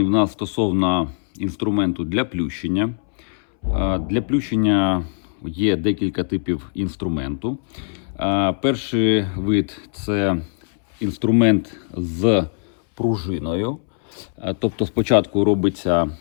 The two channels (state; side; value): silent; right; 65 dB below the other